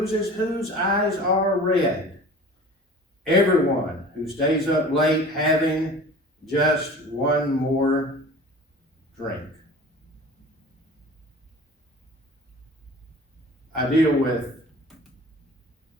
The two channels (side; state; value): both; normal; correlation 0.41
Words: Whose eyes are red? Everyone who stays up late having just one more drink. I deal with